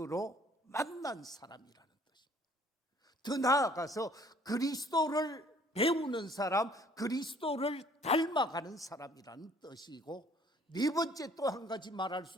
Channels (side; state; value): both; normal; correlation 0.57